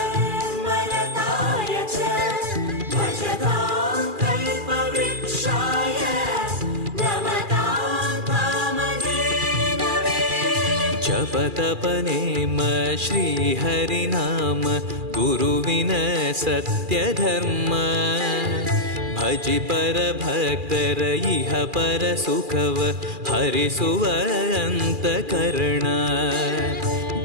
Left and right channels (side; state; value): left; late; 2.4 ms